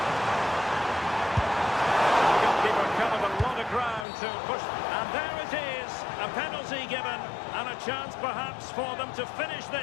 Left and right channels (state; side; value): drops out; right; at 4.0 s